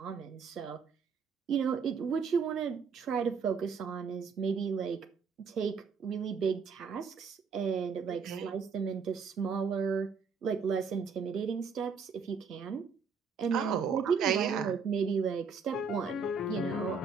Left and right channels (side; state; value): left; quieter; 5.5 dB